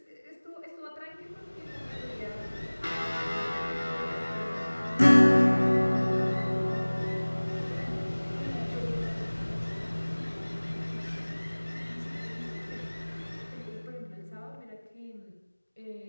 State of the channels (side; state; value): both; inverted; correlation -1.00